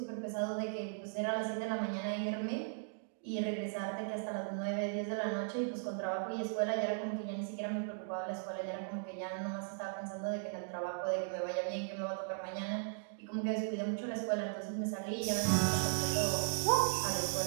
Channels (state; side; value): silent; left; digital silence